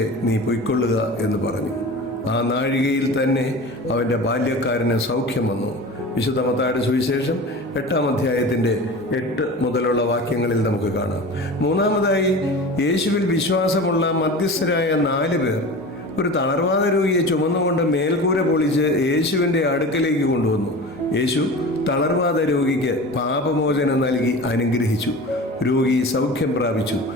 നീ പൊയ്ക്കൊള്ളുക എന്ന് പറഞ്ഞു. ആ നാഴികയിൽ തന്നെ അവൻ്റെ ബാല്യക്കാരന് സൗഖ്യം വന്നു. വിശുദ്ധ മത്തായിയുടെ സുവിശേഷം 8 മുതലുള്ള വാക്യങ്ങളിൽ നമുക്ക് കാണാം. മൂന്നാമതായി, യേശുവിൽ വിശ്വാസമുള്ള മധ്യസ്ഥരായ 4 പേർ ഒരു തളർവാദ രോഗിയെ ചുമന്നുകൊണ്ട് മേൽക്കൂര പൊളിച്ച് യേശുവിൻ്റെ അടുക്കലേക്ക് കൊണ്ടുവന്നു. യേശു തളർവാദ രോഗിക്ക് പാപമോചനം നൽകി അനുഗ്രഹിച്ചു. രോഗി സൗഖ്യം പ്രാപിച്ചു.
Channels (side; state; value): both; normal; correlation 0.34